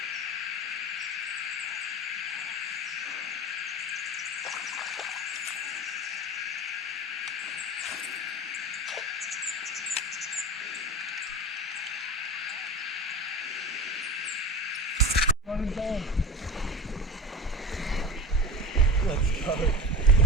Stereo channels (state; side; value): normal; both; correlation 0.31